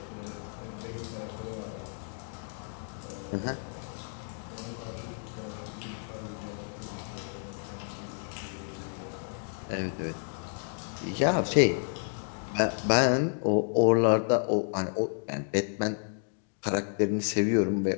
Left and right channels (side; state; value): right; silent; 57 dB below the other